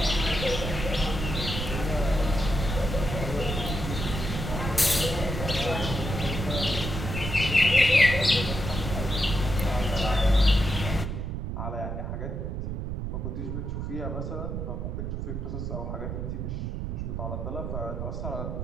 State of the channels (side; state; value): right; noise; rumble, 4 dB below the sound